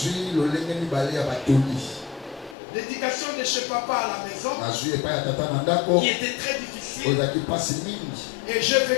L'éducation de chez papa à la maison, qui était très difficile. Et j'ai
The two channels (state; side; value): drops out; right; at 2.6 s